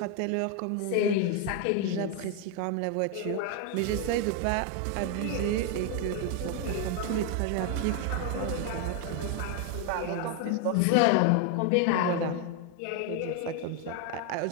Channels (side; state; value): both; different; correlation 0.01